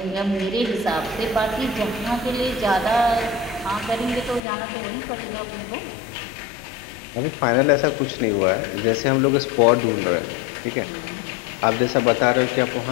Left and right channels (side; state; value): right; drops out; at 4.4 s